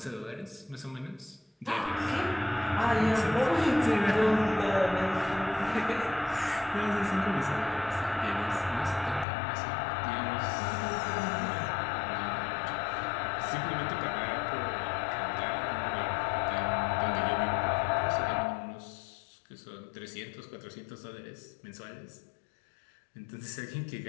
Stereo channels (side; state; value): right; drops out; at 9.2 s